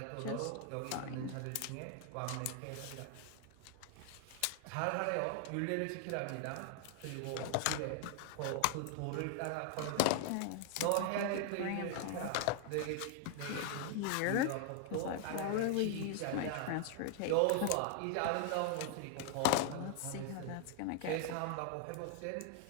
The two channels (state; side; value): different; both; correlation 0.00